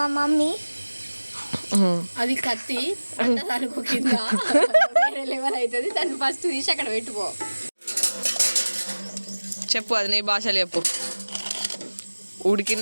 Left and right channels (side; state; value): both; inverted; correlation -1.00